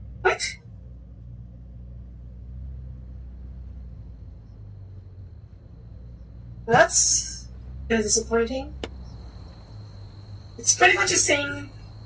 What? That's kind of disappointing. It's pretty much the same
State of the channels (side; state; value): both; identical; correlation 1.00